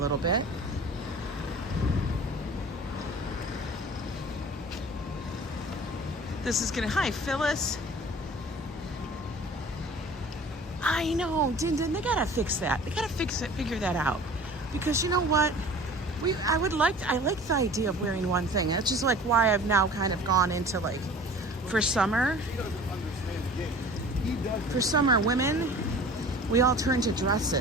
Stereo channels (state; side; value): normal; both; correlation 0.44